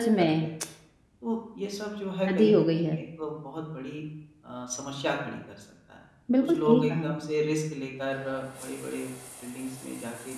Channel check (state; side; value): identical; both; correlation 1.00